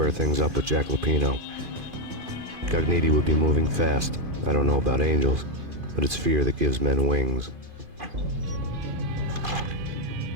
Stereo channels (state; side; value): late; left; 2.5 ms